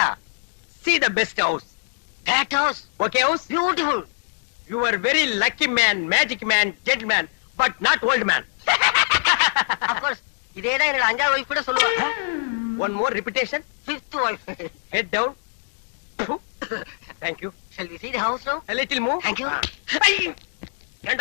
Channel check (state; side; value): silent; right; digital silence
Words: See the best house. That house, Okay house? beautiful. You are very lucky man, magic man, gentleman, but not old man. Of course, இதேதான் என்னோட 5வது வைஃப் கூட சொல்லுவா. One more repetition. 5th wife. Head down. Thank you. Shall we see the house now? A little move. Thank you.